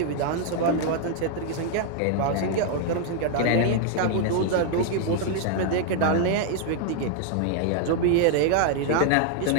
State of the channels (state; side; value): different; both; correlation 0.00